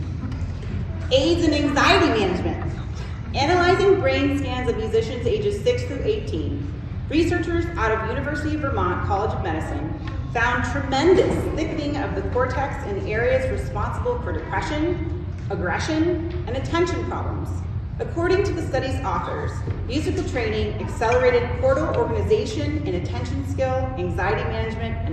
anxiety management. Analyzing brain scans of musicians ages 6 through 18, researchers out of University of Vermont College of Medicine found tremendous thickening of the cortex in areas responsible for depression, aggression, and attention problems. According to the study's authors, musical training accelerated cortical organization and attention skill, anxiety management,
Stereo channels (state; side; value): identical; both; correlation 1.00